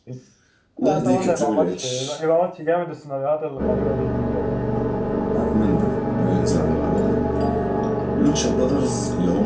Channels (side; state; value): both; identical; correlation 1.00